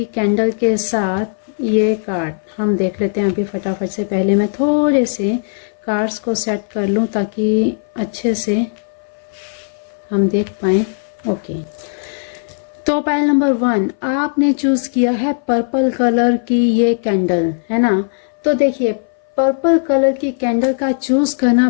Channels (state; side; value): silent; right; 62 dB below the other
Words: कैंडल के साथ ये कार्ड। हम देख लेते हैं अभी फटाफट से। पहले मैं थोड़े से कार्ड्स को सेट कर लूं ताकि अच्छे से हम देख पाए। ओके तो पायल नंबर 1 आपने चूज किया है पर्पल कलर की ये कैंडल, है ना। तो देखिए पर्पल कलर की कैंडल का चूज करना